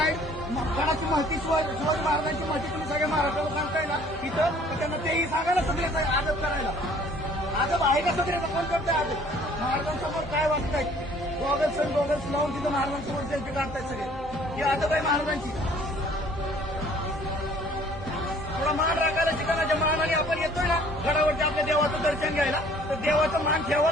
कोणाची माहिती शिवाजी महाराजांची माहिती तुम्ही सगळ्या महाराष्ट्राला सांगताय ना इथं, तर त्यांना तेही सांगा ना सगळ्याचा आदर करायला. आदर आहे का सगळ्याचा? कोण करताय आदर? महाराजांसमोर काय वागतायत? गॉगल्स लावून तिथं महाराजांसमोर सेल्फी काढतायत सगळे. ही आदर आहे महाराजांची. थोडा मान राखायला शिका ना. ज्या मानाने आपण येतोय ना गडावरती आपल्या देवाचं दर्शन घ्यायला, तर देवाचा मान ठेवा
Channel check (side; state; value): both; normal; correlation 0.55